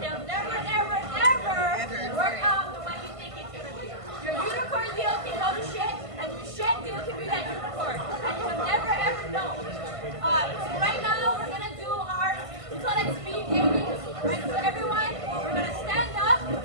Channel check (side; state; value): left; late; 1.5 ms